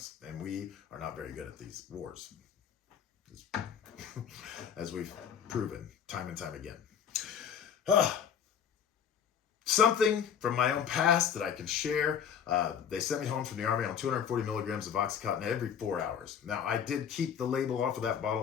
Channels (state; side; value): quieter; right; 8.1 dB